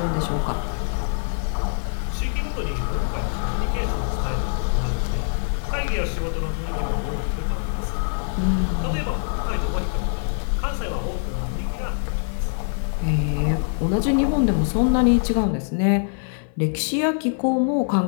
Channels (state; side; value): silent; right; 55 dB below the other